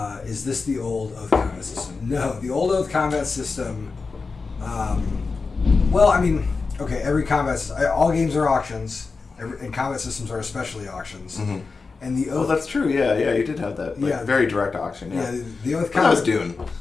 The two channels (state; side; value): quieter; right; 4.4 dB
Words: Is this the old Oath combat system? No, the old Oath combat system. Well, I mean, okay, every combat all games are auctions, and combat systems are especially auctions. Mm-hmm. And the Oath. Oh, that's true. Yeah, you did have that. Very direct auction. Yeah, the Oath combat. combat. That was Dune.